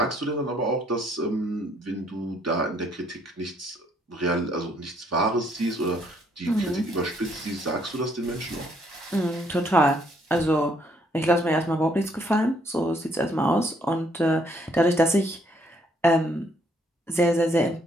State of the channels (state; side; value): normal; both; correlation 0.68